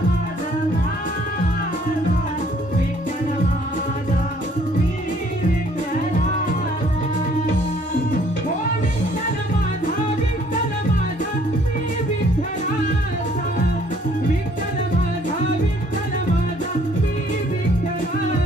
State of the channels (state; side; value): normal; both; correlation 0.60